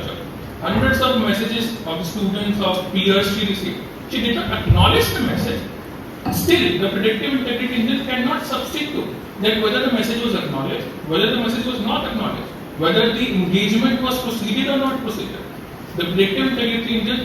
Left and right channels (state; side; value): identical; both; correlation 1.00